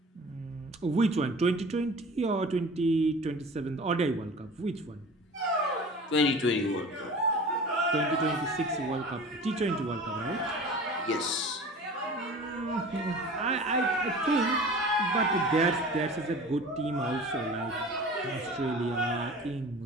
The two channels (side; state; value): both; normal; correlation 0.40